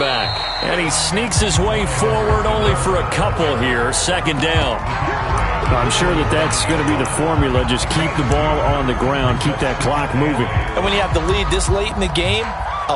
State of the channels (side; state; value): both; identical; correlation 1.00